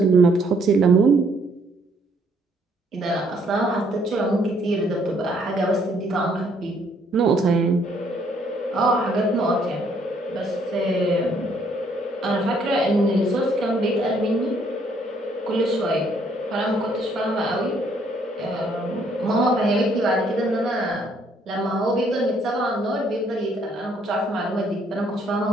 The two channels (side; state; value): both; normal; correlation 0.67